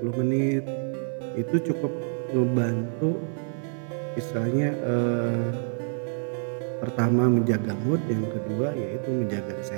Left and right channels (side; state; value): left; silent; 60 dB below the other